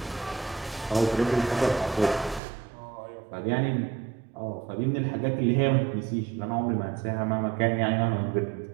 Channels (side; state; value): left; drops out; at 2.4 s